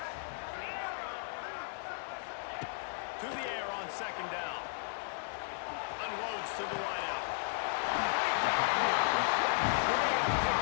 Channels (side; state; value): right; silent; digital silence